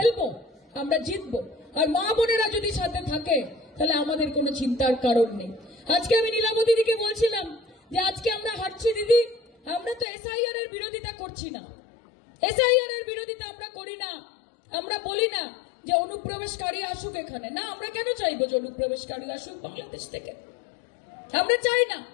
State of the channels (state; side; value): drops out; right; at 10.1 s